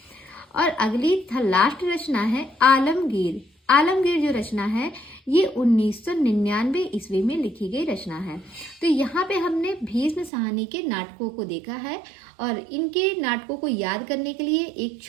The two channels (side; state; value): left; drops out; at 10.3 s